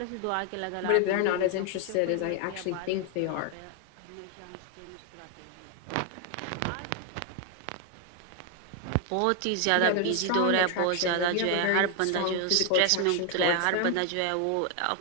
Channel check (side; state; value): both; different; correlation 0.00